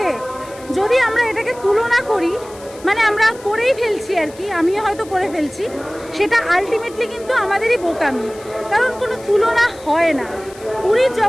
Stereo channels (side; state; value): left; noise; hiss, 21 dB below the sound